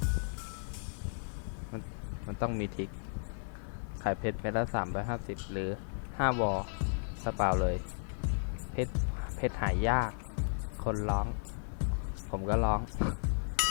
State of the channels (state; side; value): silent; right; digital silence